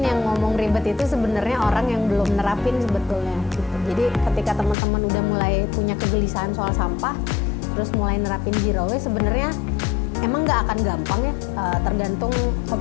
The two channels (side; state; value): right; drops out; at 4.8 s